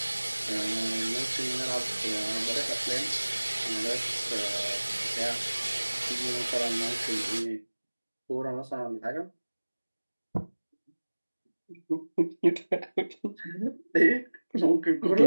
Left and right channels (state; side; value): inverted; both; correlation -1.00